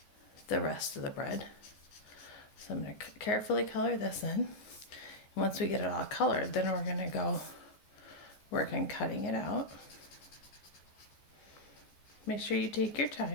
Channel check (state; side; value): late; right; 14 ms